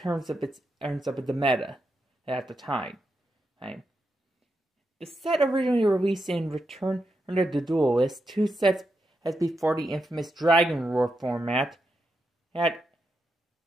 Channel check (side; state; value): both; normal; correlation 0.85